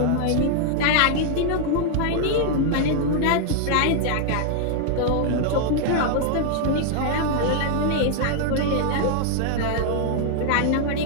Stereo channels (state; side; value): different; both; correlation 0.00